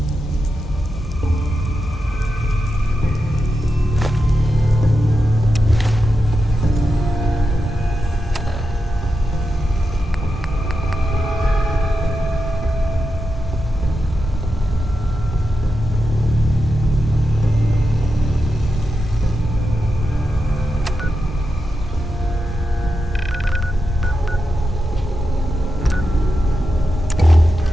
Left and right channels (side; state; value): both; normal; correlation 0.88